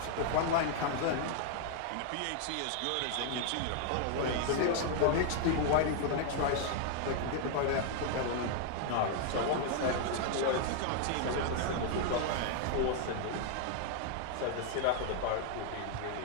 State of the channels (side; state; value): both; different; correlation 0.00